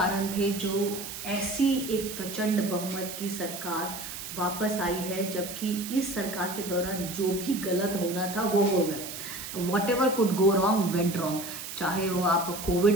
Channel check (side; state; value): right; noise; hiss, 9 dB below the sound